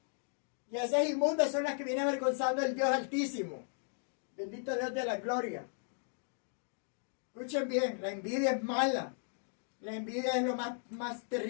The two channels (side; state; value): right; silent; 54 dB below the other